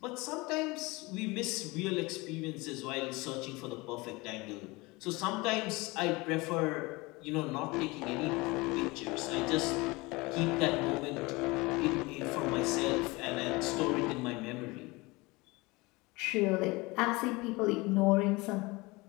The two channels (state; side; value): quieter; right; 23.7 dB